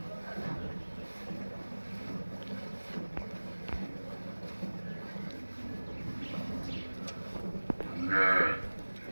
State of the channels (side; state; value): both; inverted; correlation -1.00